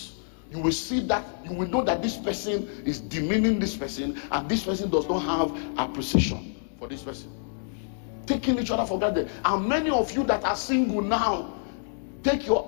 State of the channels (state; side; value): silent; right; 60 dB below the other